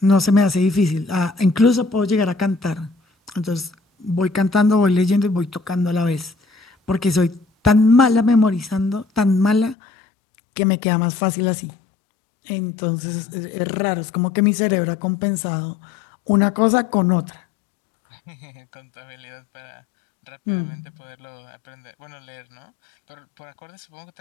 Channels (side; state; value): right; drops out; at 9.8 s